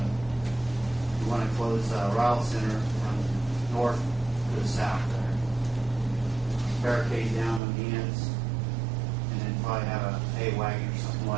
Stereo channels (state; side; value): drops out; left; at 7.6 s